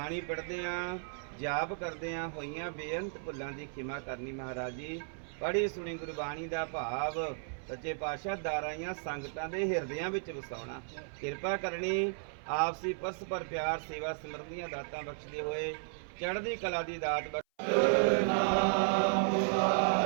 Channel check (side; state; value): left; silent; 55 dB below the other